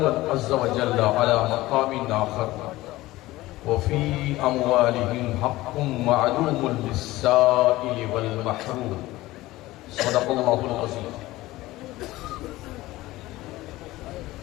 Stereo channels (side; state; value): right; quieter; 17.9 dB